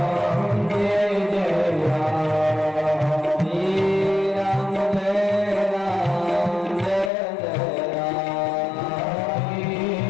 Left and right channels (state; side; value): drops out; right; at 7.1 s